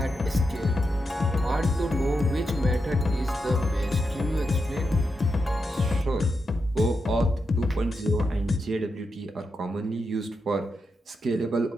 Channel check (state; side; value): normal; both; correlation 0.86